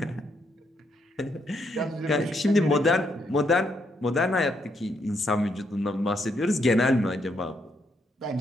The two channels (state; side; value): normal; both; correlation 0.76